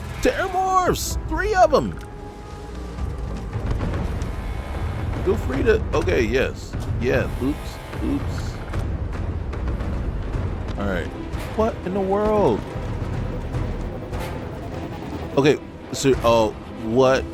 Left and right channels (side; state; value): both; identical; correlation 1.00